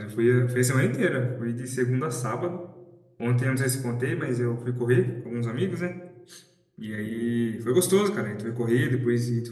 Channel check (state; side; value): identical; both; correlation 1.00